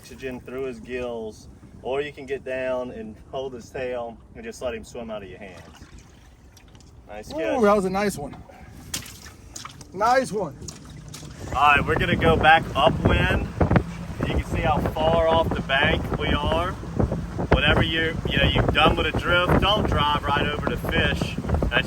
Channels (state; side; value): identical; both; correlation 1.00